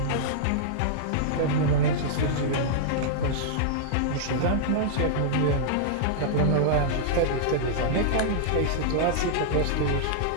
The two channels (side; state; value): both; different; correlation -0.02